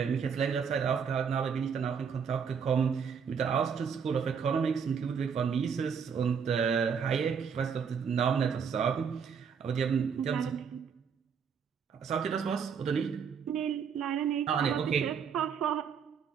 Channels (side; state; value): left; quieter; 6.7 dB